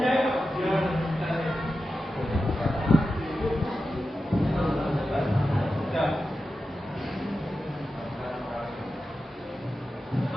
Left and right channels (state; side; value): normal; both; correlation 0.91